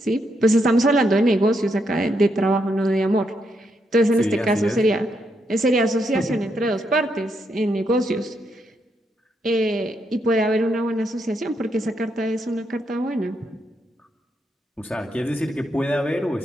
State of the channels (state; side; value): normal; both; correlation 0.79